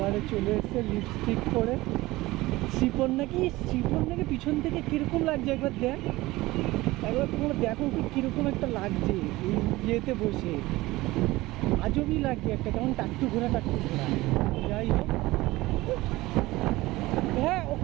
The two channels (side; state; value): left; quieter; 19.2 dB